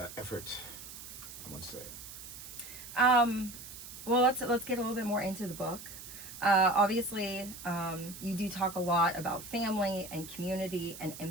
effort, I must say. Well, let's get a little bit more into the book. Obviously, you do talk a lot about family and community and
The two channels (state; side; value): noise; right; hiss, 13 dB below the sound